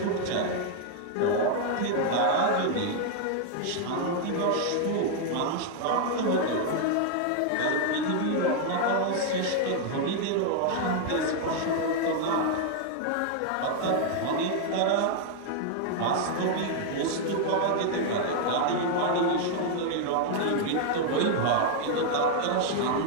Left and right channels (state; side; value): different; both; correlation 0.00